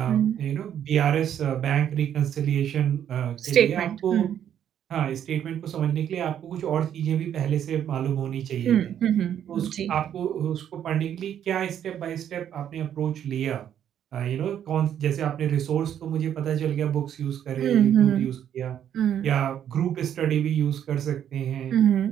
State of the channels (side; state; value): left; quieter; 9.7 dB